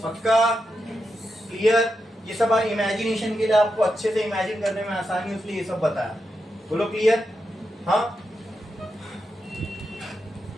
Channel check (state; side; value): normal; both; correlation 0.86